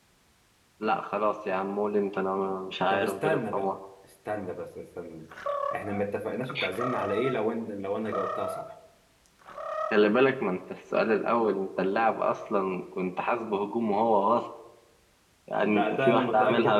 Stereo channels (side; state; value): both; identical; correlation 1.00